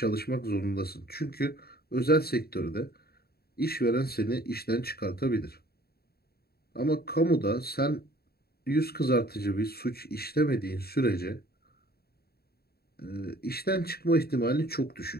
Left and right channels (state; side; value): late; right; 0.45 ms